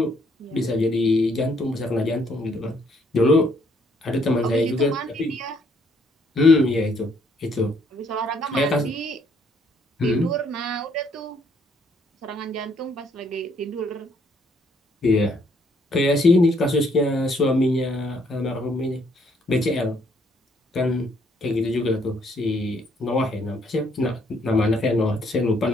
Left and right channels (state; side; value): normal; both; correlation 0.68